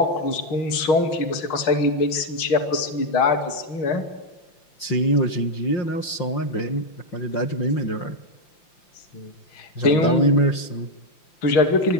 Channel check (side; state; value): right; late; 5.8 ms